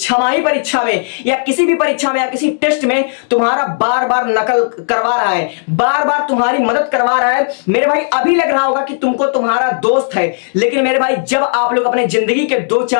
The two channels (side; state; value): right; silent; digital silence